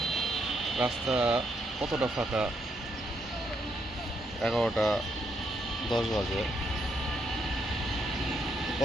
রাস্তা কতটা ফাঁকা, 11:10 বাজে।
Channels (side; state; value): both; normal; correlation 0.77